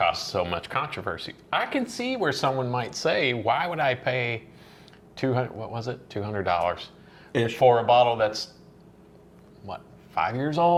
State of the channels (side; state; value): both; identical; correlation 1.00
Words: so much controversy, I can see where someone might say, why would I pay $200 for a bottle that's, 5 years